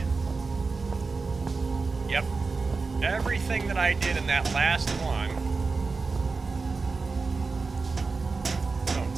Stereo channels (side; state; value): left; quieter; 4.2 dB